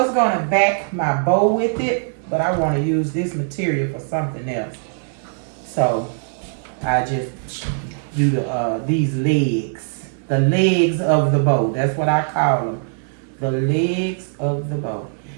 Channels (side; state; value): left; silent; digital silence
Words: going to back my bow with it, but I want to use this material for something else. So I just do these legs, the legs of the bow. That's what I call them, the legs of the bow.